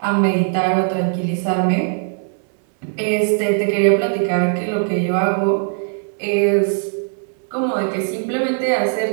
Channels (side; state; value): left; silent; 65 dB below the other